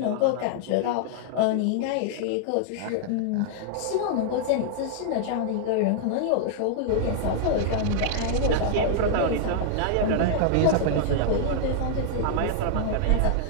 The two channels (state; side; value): different; both; correlation -0.01